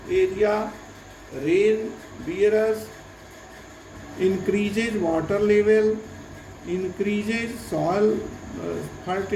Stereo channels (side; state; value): both; identical; correlation 1.00